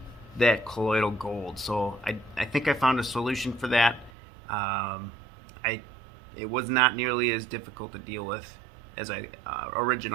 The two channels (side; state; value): left; drops out; at 4.1 s